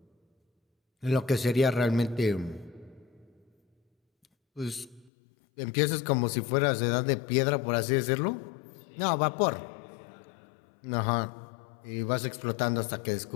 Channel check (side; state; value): right; drops out; at 5.1 s